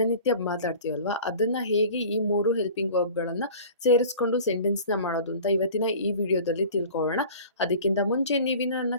ಮಾತಾಡ್ತೀವಲ್ವ ಅದನ್ನು ಹೇಗೆ ಈ ಮೂರು ಹೆಲ್ಪಿಂಗ್ ವರ್ಬ್ಗಳನ್ನು ಸೇರಿಸ್ಕೊಂಡು ಸೆಂಟೆನ್ಸ್ನ ಮಾಡೋದು ಅಂತ ಇವತ್ತಿನ ಈ ವಿಡಿಯೋದಲ್ಲಿ ತಿಳ್ಕೊಳ್ಳೋಣ. ಅದಕ್ಕಿಂತ ಮುಂಚೆ ನೀವಿನ್ನು ನನ್ನ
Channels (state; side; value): inverted; both; correlation -0.42